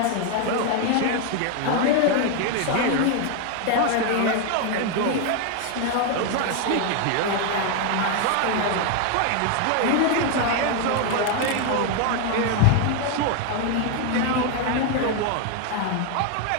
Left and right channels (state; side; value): different; both; correlation 0.01